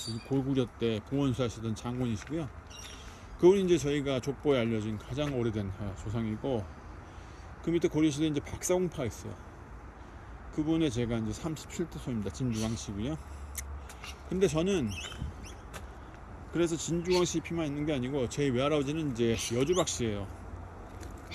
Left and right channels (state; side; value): identical; both; correlation 1.00